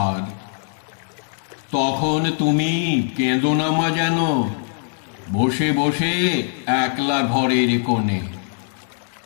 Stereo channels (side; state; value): right; silent; digital silence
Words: তখন তুমি কেঁদো না মা যেন, বসে বসে একলা ঘরের কোণে।